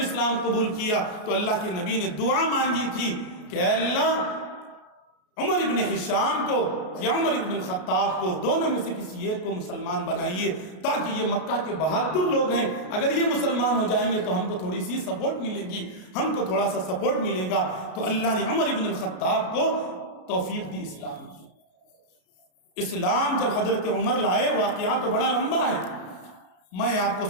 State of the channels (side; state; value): right; late; 33 ms